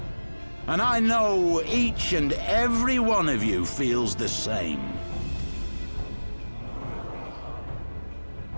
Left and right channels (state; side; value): inverted; both; correlation -1.00